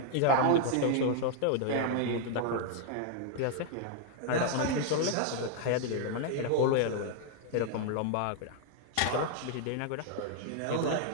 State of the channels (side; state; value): both; different; correlation 0.00